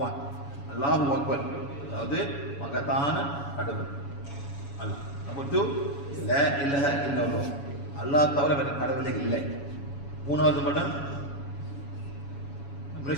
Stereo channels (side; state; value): right; late; 7.1 ms